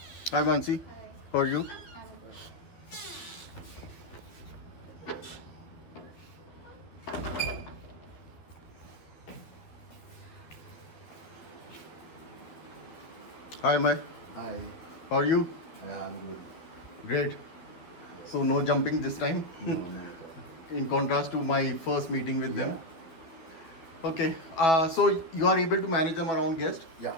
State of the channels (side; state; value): right; late; 12 ms